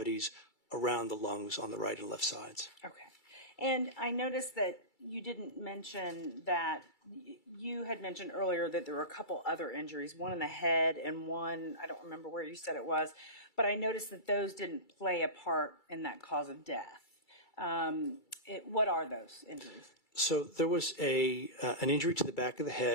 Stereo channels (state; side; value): late; right; 2.3 ms